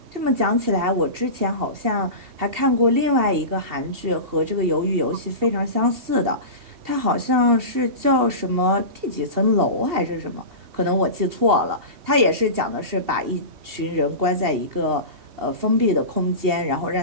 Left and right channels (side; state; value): left; late; 2.7 ms